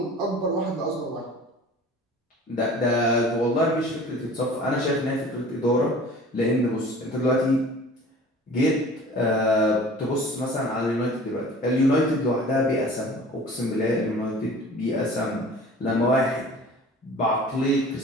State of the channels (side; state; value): both; normal; correlation 0.44